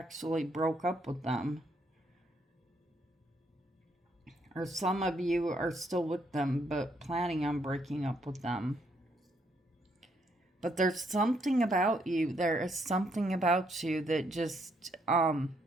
broke up with them. Or some of you are still with them, but planning on breaking up with them. But there's something about you. There is something about you that just,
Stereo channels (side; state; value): both; normal; correlation 0.72